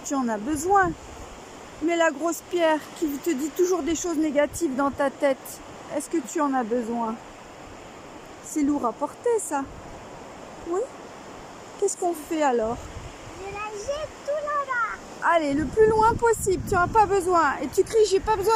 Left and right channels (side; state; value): both; identical; correlation 1.00